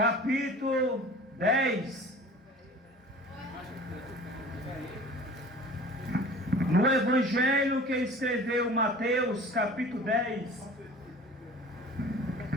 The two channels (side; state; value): both; normal; correlation 0.43